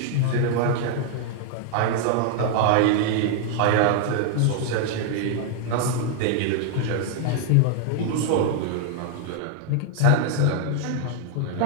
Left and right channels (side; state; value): both; different; correlation 0.00